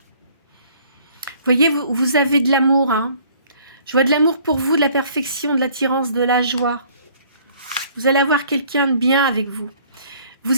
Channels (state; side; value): inverted; both; correlation -0.57